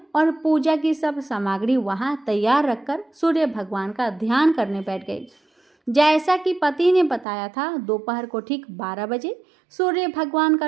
और पूजा की सब सामग्री वहां तैयार रखकर सूर्य भगवान का ध्यान करने बैठ गई। जैसा कि पति ने बताया था, दोपहर को ठीक 12 बजे सूर्य भगवान का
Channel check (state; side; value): drops out; left; at 7.2 s